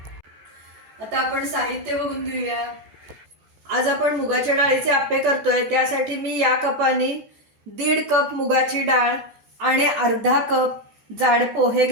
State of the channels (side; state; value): left; late; 14 ms